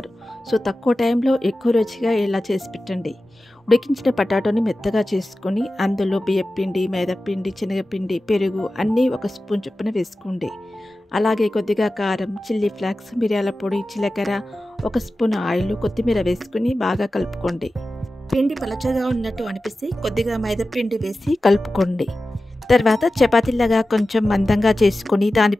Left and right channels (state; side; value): normal; both; correlation 0.94